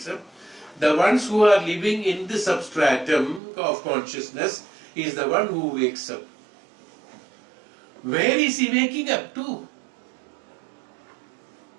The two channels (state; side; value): drops out; left; at 3.4 s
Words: up. The ones who are living in the substratum of consciousness is the one who wakes up. Where is he waking up to?